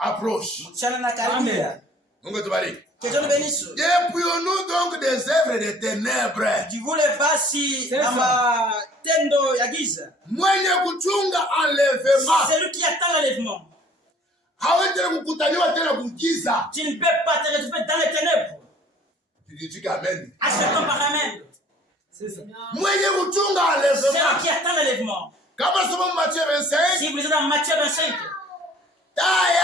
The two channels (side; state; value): both; normal; correlation 0.53